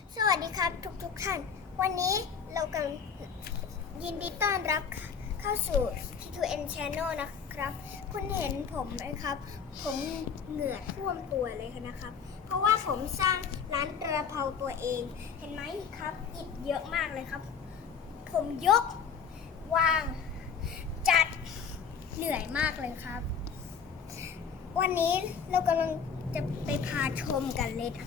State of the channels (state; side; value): quieter; right; 6.6 dB